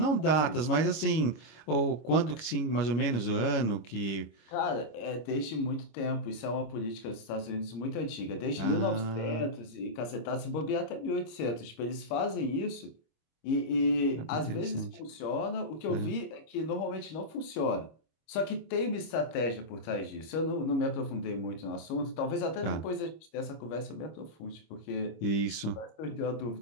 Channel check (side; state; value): right; late; 25 ms